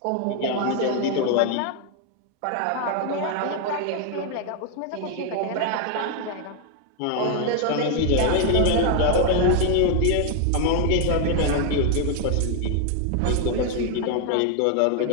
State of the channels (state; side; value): different; both; correlation 0.00